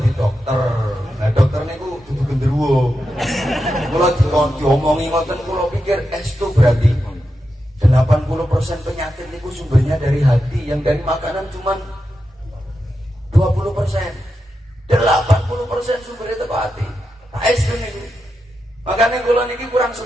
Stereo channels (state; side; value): normal; both; correlation 0.88